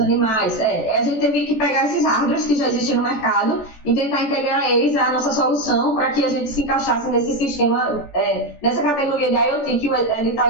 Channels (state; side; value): late; right; 14 ms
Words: A gente teve que pegar esses hardwares que já existem no mercado e tentar integrar eles à nossa solução para que a gente se encaixasse nesse sistema, nessa categoria de IoT que o edital